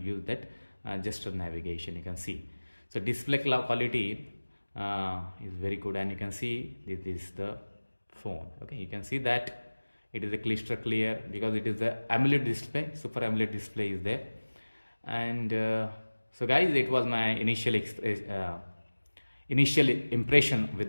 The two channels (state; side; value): inverted; both; correlation -1.00